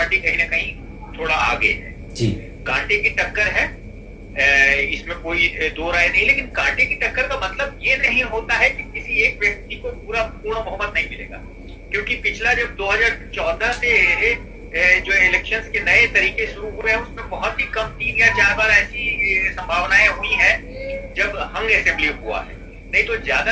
कहीं ना कहीं थोड़ा आगे है जी। कांटे की टक्कर है, इसमें कोई दो राय नहीं। लेकिन कांटे की टक्कर का मतलब ये नहीं होता है कि किसी एक व्यक्ति को पूर्ण बहुमत नहीं मिलेगा, क्योंकि पिछला जब 2014 से जो इलेक्शंस के नए तरीके शुरू हुए हैं उसमें बहुत ही कम 3 या 4 बार ऐसी संभावनाएं हुई हैं जब हंग असेंबली हुआ है। नहीं तो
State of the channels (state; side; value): identical; both; correlation 1.00